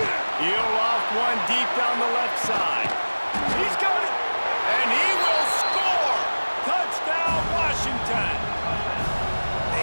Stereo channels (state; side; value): inverted; both; correlation -1.00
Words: He'll loft one deep down the left side. He's got it. And he will score. Touchdown, Washington.